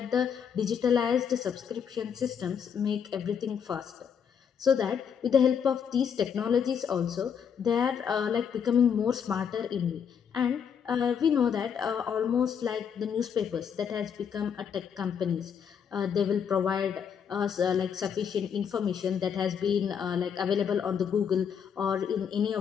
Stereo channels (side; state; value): right; quieter; 7.5 dB